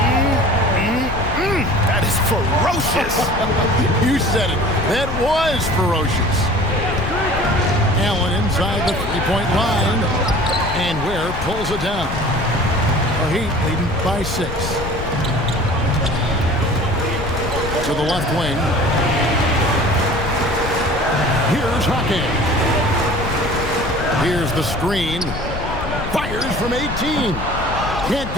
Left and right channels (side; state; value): left; noise; rumble, 7 dB below the sound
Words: That is ferocious. You said it. That was ferocious. Allen inside the three-point line. And Ware pulls it down. The Heat leading by 6. To the left wing. Here's Hawkins. Here's the screen. Fires from 18. Can't